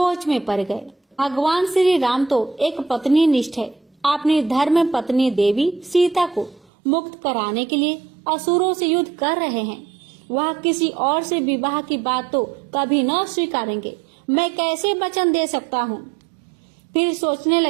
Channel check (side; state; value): left; drops out; at 6.7 s